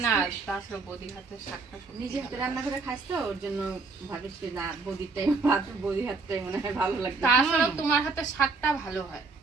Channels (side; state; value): left; quieter; 4.0 dB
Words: না, তাছাড়া বৌদির হাতের শাকটা নিজে হাতে রান্না করে খাস তো ওর জন্য ভাবিস না বৌদির টাইম ভাত বৌদির হাতটাই মনে হয় ভালো লাগে। তাছাড়াও তোমার হাতের শাকটা ভালো হয়।